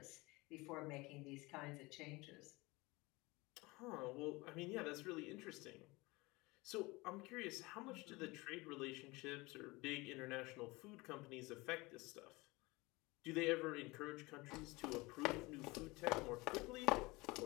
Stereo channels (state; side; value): quieter; right; 23.2 dB